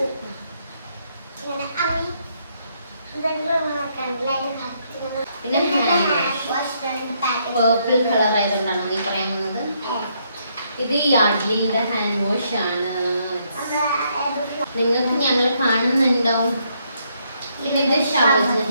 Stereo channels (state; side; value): inverted; both; correlation -0.74